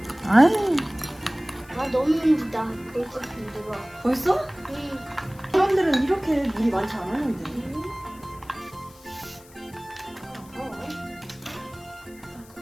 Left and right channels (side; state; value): left; noise; hiss, 24 dB below the sound